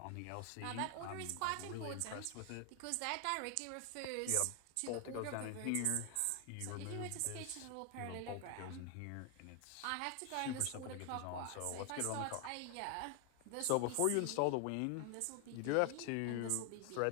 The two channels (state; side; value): different; both; correlation 0.00